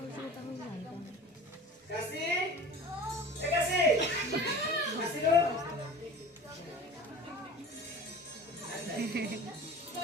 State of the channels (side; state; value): both; normal; correlation 0.38